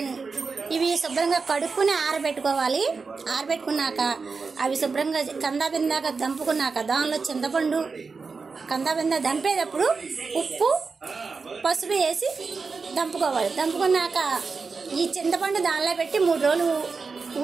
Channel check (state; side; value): quieter; left; 4.7 dB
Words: ఇవి శుభ్రంగా కడుక్కుని ఆరబెట్టుకోవాలి. ఆరబెట్టుకున్నాక అవి శుభ్రంగా కందాబిందాక దంపుకున్నాక దానిలో చింతపండు కందాబిందా దంపేటప్పుడు ఉప్పు పసుపు వేసి దంపుకోవాలి. దంపుకున్నాక ఈ చింతపండు దానిలో పెట్టి 3 రోజులు